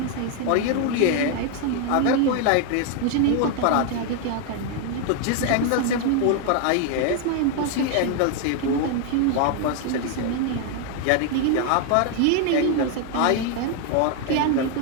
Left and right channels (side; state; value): both; different; correlation 0.01